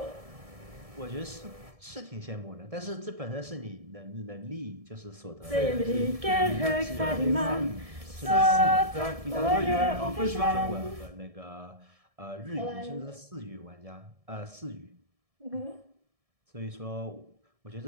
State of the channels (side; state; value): left; late; 1.7 ms